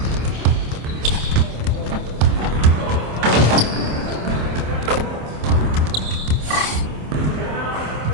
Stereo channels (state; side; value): late; left; 27 ms